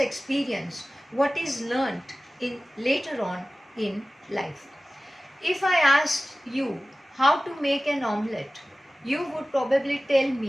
what is learnt in later on in life. If I asked you how to make an omelette, you would probably tell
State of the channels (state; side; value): normal; both; correlation 0.97